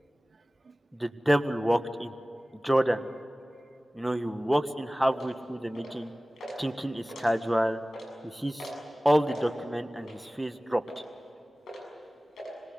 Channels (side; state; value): both; normal; correlation 0.98